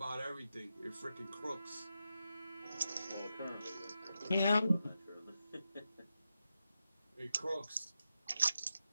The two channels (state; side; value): inverted; both; correlation -0.88